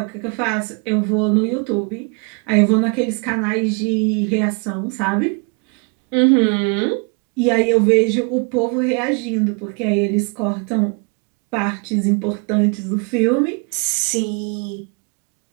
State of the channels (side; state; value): left; quieter; 34.6 dB